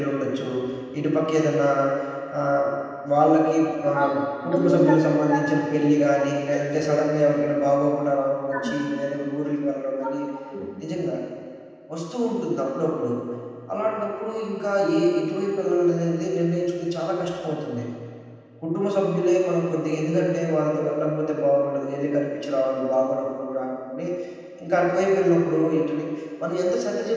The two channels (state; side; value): identical; both; correlation 1.00